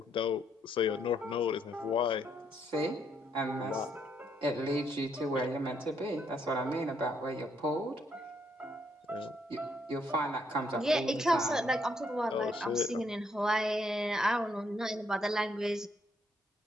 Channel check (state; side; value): normal; both; correlation 0.72